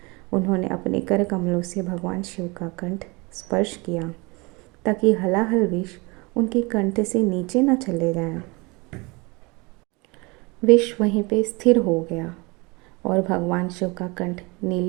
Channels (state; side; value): quieter; left; 26.6 dB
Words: उन्होंने अपने कर कमलों से भगवान शिव का कंठ स्पर्श किया ताकि हलाहल विष उनके कंठ से नीचे न चले जाएं। विष वहीं पे स्थिर हो गया और भगवान शिव का कंठ